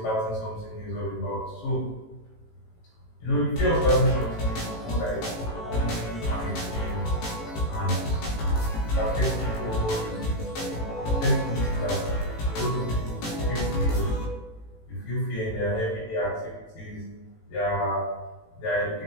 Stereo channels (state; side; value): late; right; 18 ms